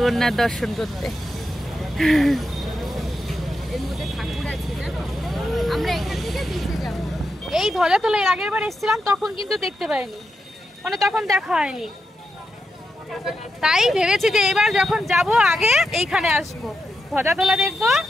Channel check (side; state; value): both; normal; correlation 0.86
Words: দর্শন করতে। এর মধ্যে ঠাকুর আছে জানো, আমরা এখান থেকে বিচে যাব। এই ধ্বজা তোলা এর আগের বার এসেছিলাম, তখন কিন্তু দেখতে পাইনি, মানে তখন দেখা হয়নি। তাই ভেবেছি যে এবার যখন যাব আগে এইখানে আসবো, ধ্বজা তোলা দেখবো,